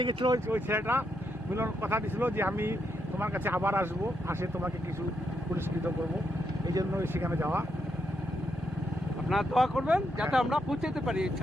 গেছিল ওই ছেলেটা। মিলন কথা দিয়েছিল যে আমি তোমার কাছে আবার আসবো, আসে তোমাকে কিছু পুরস্কৃত করব, এই জন্য সেখানে যাওয়া। আপনারা দোয়া করবেন যাতে আমরা পৌঁছাতে পারি এই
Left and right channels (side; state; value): both; normal; correlation 0.80